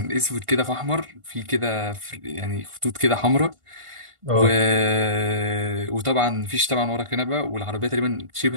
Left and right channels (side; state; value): left; late; 1.5 ms